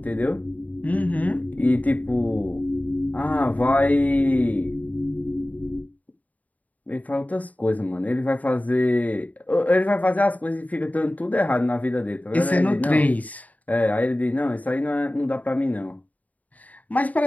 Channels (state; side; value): late; right; 0.074 ms